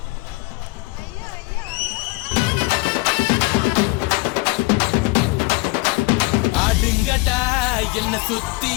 ஆடுங்கடா என்ன சுத்தி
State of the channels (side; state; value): right; quieter; 23.5 dB